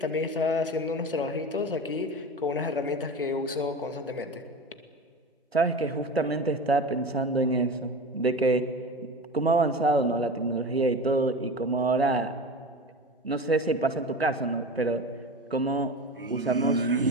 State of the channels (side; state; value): both; normal; correlation 0.30